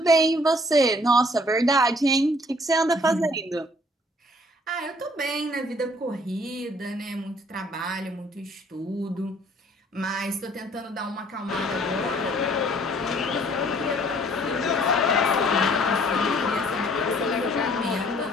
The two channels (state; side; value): normal; both; correlation 0.59